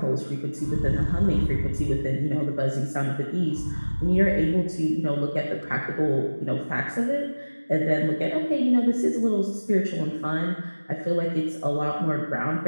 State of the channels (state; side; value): inverted; both; correlation -1.00